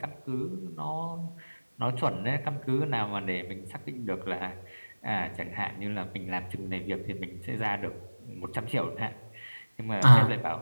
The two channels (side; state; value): both; inverted; correlation -1.00